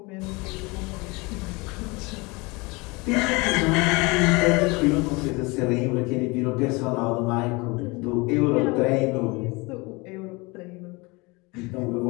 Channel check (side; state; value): right; quieter; 25.8 dB